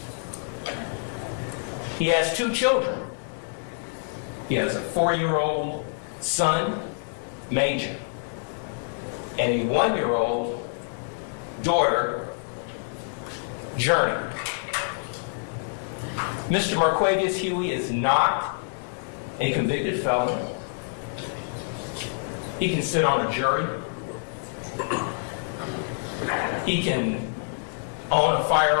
He has 2 children. He has a 4-year-old son, Major, and a 1-year-old daughter, Journey. Mr. Marquavius Huey is not a convicted felon. He can sit on a jury. He can own a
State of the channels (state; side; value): silent; right; digital silence